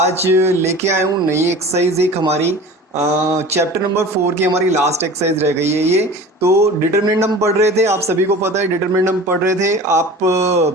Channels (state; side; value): normal; both; correlation 0.38